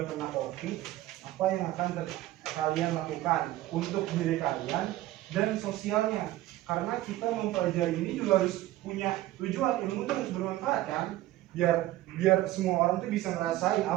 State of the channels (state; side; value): quieter; left; 15.7 dB